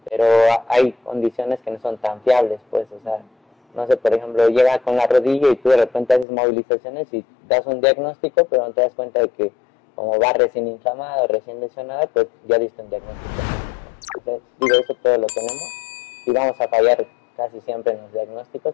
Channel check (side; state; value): right; drops out; at 6.2 s